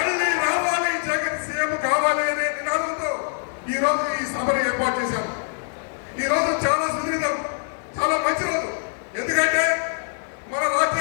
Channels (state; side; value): silent; right; digital silence